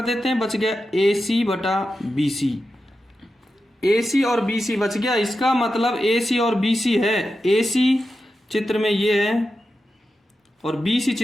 देते हैं, बच गया ए सी बटा बी सी। ए सी और बी सी बच गया, इसका मतलब ए सी और बी सी है। ए सी चित्र में ये है और बी सी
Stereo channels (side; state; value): both; normal; correlation 0.90